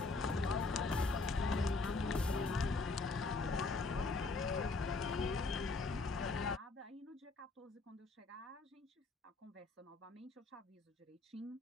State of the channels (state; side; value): quieter; right; 3.7 dB